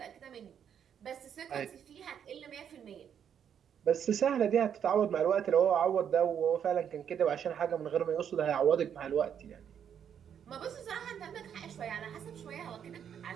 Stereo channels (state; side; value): quieter; left; 8.5 dB